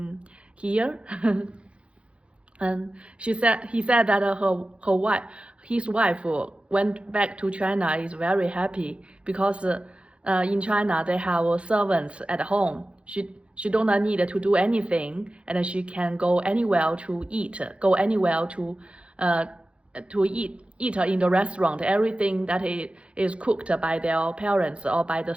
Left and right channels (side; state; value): left; late; 0.060 ms